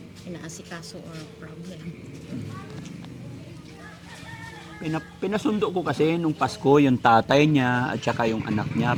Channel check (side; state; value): both; identical; correlation 1.00